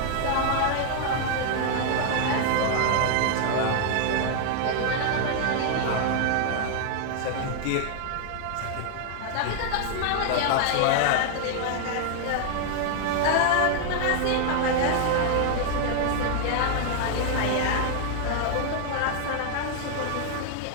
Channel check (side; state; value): both; different; correlation 0.00